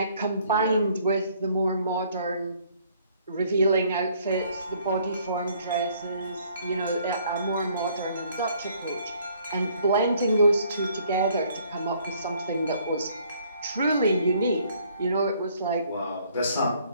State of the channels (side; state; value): both; inverted; correlation -0.62